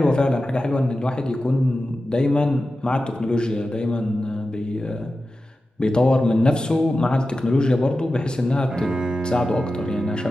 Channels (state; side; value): normal; both; correlation 0.93